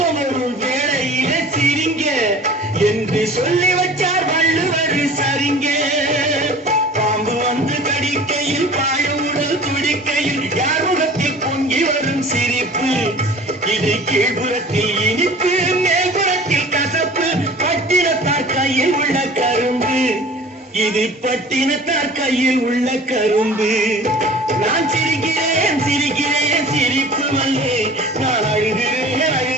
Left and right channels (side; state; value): both; normal; correlation 0.44